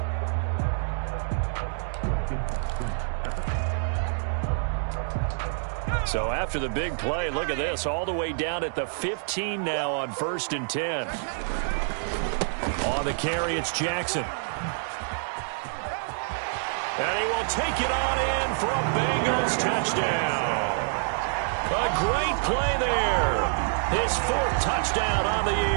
So after the big play, look at this, all the way down at the 15 now on 1st and 10. On the carry, it's Jackson. And he will take it on in for a Bengals touchdown. A great play there. His 4th touchdown on the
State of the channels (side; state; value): left; silent; digital silence